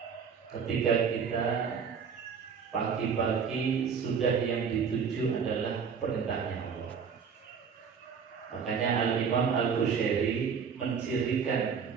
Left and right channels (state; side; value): quieter; left; 6.4 dB